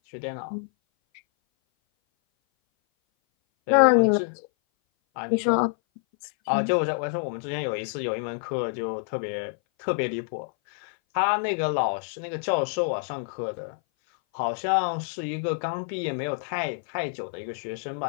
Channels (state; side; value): silent; right; 58 dB below the other